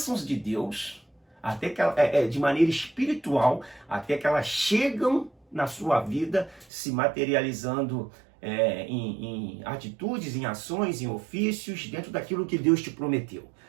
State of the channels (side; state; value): left; drops out; at 6.7 s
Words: de Deus, até que de maneira espiritual, até que elas chegam na sua vida, se materializando em atitudes, em ações, em ofícios, dentro daquilo que Deus te prometeu.